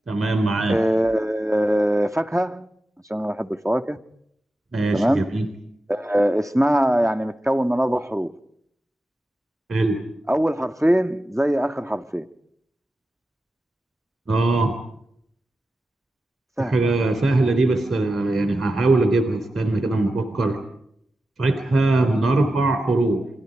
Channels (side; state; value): both; normal; correlation 0.92